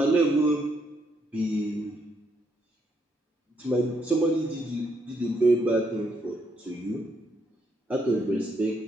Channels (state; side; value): normal; both; correlation 0.75